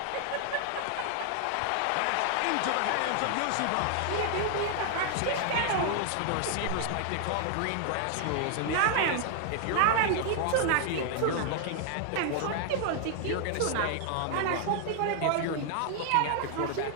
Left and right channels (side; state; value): both; different; correlation 0.00